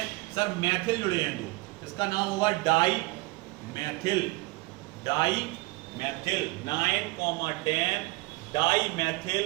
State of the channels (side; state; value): left; quieter; 22.4 dB